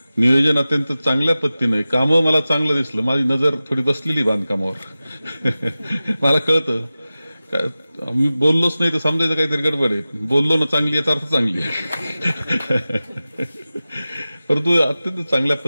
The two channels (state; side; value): inverted; both; correlation -0.96